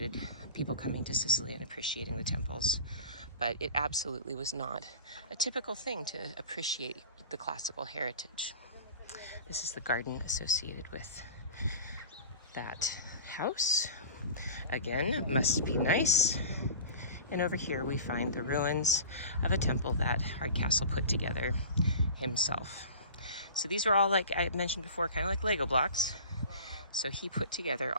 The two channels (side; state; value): both; inverted; correlation -0.38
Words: people coming to Sicily and appreciating the temples, but it absolutely was not a typical thing to appreciate the classical heritage. This is the garden associated with that house. Again, must be nice. And over here we find the ruins of a temple that Hardcastle put together himself. So these are all, like I mentioned before, kind of like Lego blocks. So he put together